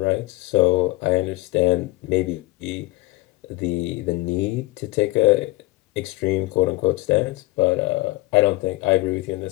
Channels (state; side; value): quieter; right; 20.5 dB